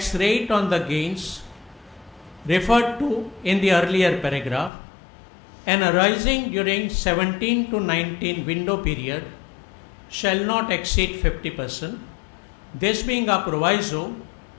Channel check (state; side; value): drops out; right; at 4.7 s